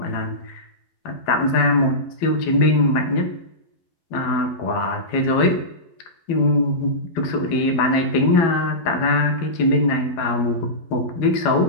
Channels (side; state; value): right; late; 12 ms